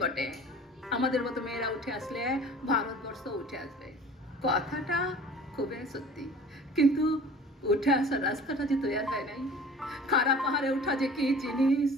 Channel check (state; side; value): normal; both; correlation 0.44